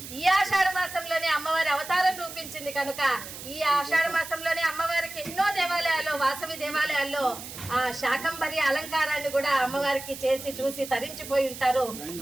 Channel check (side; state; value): right; noise; hiss, 12 dB below the sound